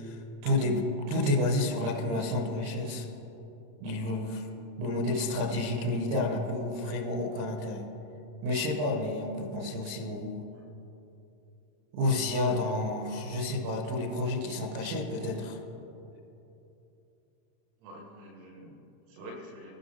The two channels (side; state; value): left; late; 35 ms